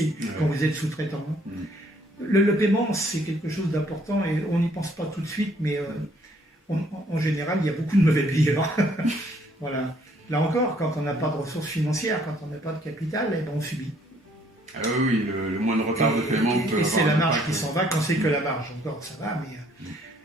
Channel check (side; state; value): both; normal; correlation 0.64